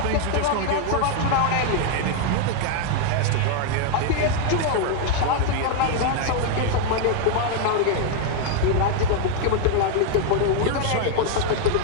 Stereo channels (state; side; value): different; both; correlation 0.00